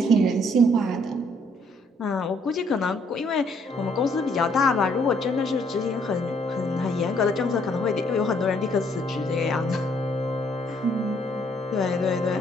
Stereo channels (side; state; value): both; normal; correlation 0.67